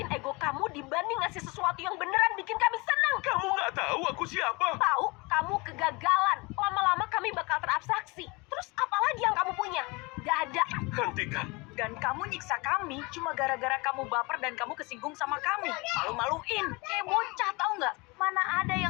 ego kamu dibanding ngasih sesuatu yang beneran bikin kami senang. Kamu nggak tahu aku siapa? Tahu, kamu kegagalan. Lama-lama kami bakal terabstraksi. Terus apa lagi yang kamu punya? Gak ada. Hentikan. Dan kamu nyiksa kami cuma gara-gara kamu baper dan kamu kesinggung sama kami. Malu-maluin. Kayak bocah, tahu nggak? Mana ada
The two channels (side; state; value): right; quieter; 26.3 dB